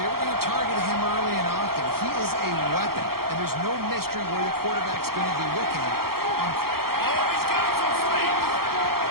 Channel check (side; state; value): left; late; 0.94 ms